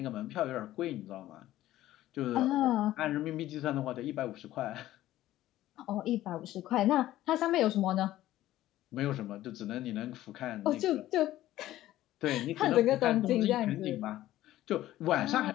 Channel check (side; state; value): right; quieter; 14.5 dB